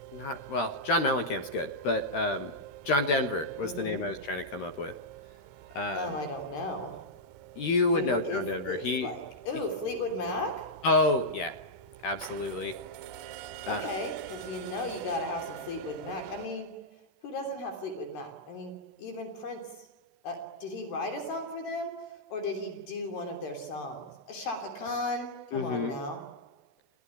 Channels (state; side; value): late; right; 14 ms